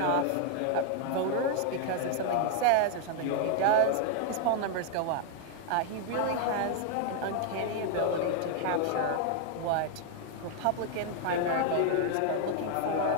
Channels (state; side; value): different; both; correlation 0.00